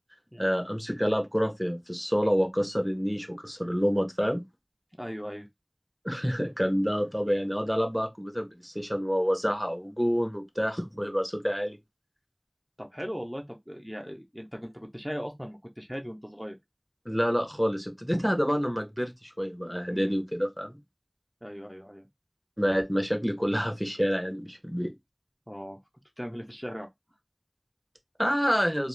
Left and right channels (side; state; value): both; identical; correlation 1.00